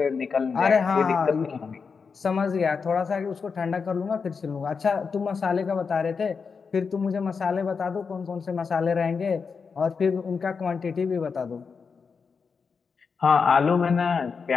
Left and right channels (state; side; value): quieter; right; 5.4 dB